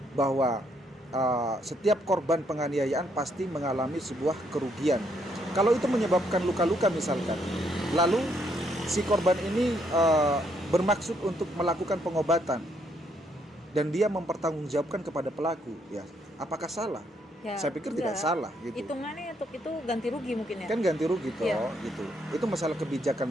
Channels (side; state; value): both; normal; correlation 0.73